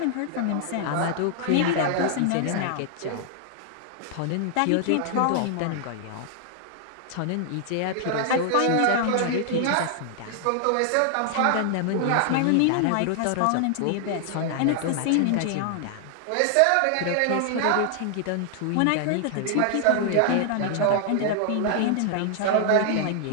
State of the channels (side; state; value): both; different; correlation 0.00